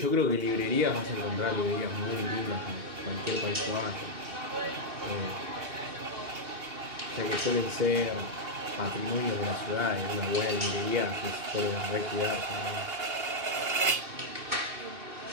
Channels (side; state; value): left; late; 2.8 ms